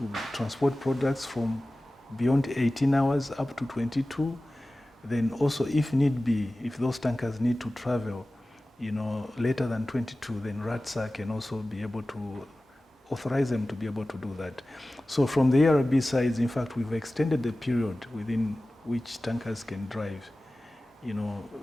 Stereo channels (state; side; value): normal; both; correlation 0.97